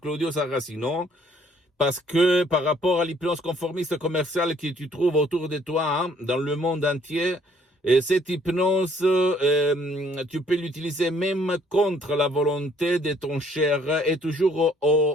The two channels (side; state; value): both; normal; correlation 0.63